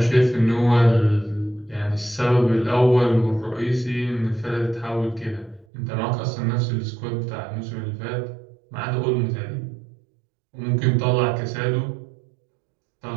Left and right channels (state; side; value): drops out; left; at 5.7 s